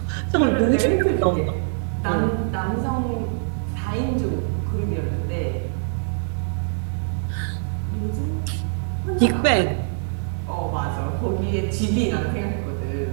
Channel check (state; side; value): silent; left; digital silence